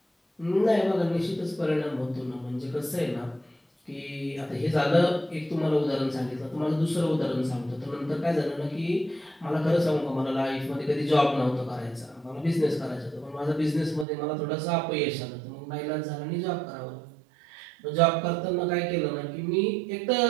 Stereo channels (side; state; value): left; drops out; at 14.1 s